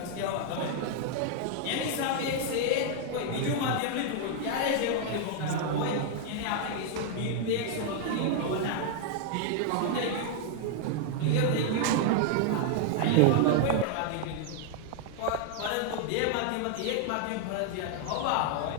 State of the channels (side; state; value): both; different; correlation 0.00